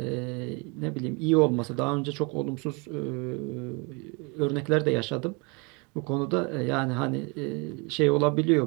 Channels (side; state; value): left; quieter; 29.9 dB